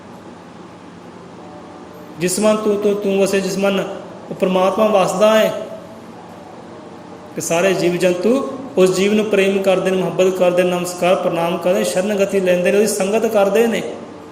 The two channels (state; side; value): identical; both; correlation 1.00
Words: ਜਿਸ ਮਨ ਤੂੰ ਵਸੇ, ਜਿਸ ਮਨ ਉਹ ਪਰਮਾਤਮਾ ਵਸਦਾ ਹੈ, ਕਿ ਸਾਰੇ ਜੀਵ ਜੰਤੂ ਉਸ ਜੀਵ ਨੂੰ ਪ੍ਰੇਮ ਕਰਦੇ ਨੇ, ਮੁਹੱਬਤ ਕਰਦੇ, ਨਮਸਕਾਰ ਪ੍ਰਣਾਮ ਕਰਦੇ, ਸ਼ਰਨਗਤੀ ਲੈਂਦੇ ਨੇ, ਉਹਦੀ ਸੰਗਤ ਕਰਦੇ ਨੇ,